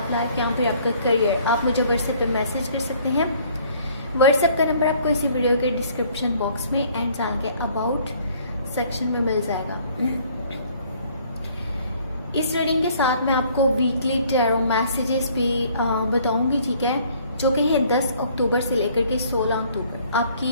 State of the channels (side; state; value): both; inverted; correlation -0.59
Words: लाइफ या फिर आपका करियर, आप मुझे व्हाट्सएप पे मैसेज कर सकते हैं। व्हाट्सएप का नंबर आपको इसी वीडियो के डिस्क्रिप्शन बॉक्स में एंड चैनल के अबाउट सेक्शन में मिल जाएगा। इस रीडिंग के साथ मैं आपको वीकली टैरो मैसेजेस भी बताऊंगी, ठीक है, जो कि है 10 अक्टूबर से लेकर के 16 अक्टूबर।